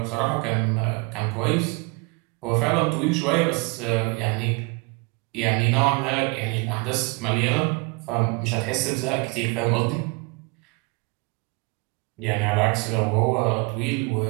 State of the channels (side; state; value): left; quieter; 28.8 dB